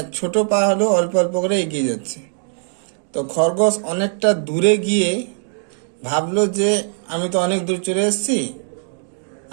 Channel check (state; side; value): silent; left; 56 dB below the other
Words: ছোট পা হলেও অল্প অল্প করে এগিয়ে যাচ্ছে। তো খরগোশ অনেকটা দূরে গিয়ে ভাবলো যে আমি তো অনেক দূর চলে এসেছি,